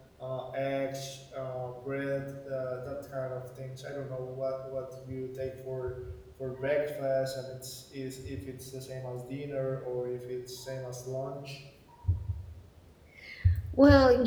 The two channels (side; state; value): both; identical; correlation 1.00